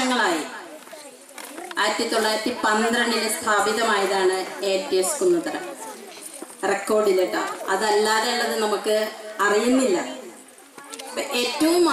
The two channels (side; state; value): both; identical; correlation 1.00